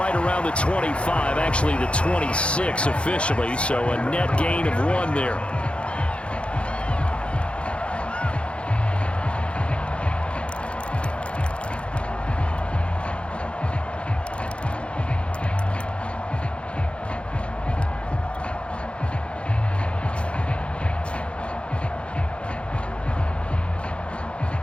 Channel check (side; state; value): right; late; 0.059 ms